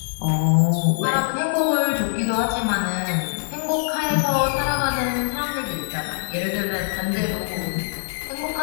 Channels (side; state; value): right; silent; digital silence